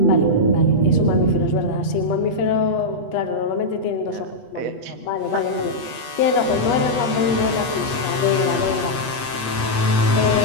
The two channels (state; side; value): late; right; 8.3 ms